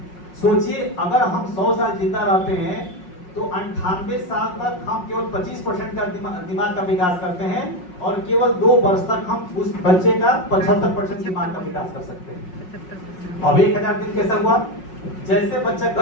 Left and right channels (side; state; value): right; late; 5.5 ms